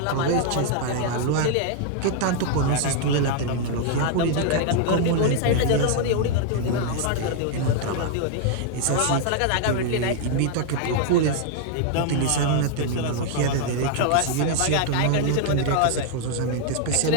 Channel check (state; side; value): different; both; correlation 0.00